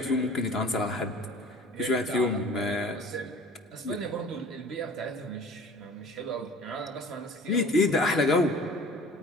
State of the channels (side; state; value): both; normal; correlation 0.45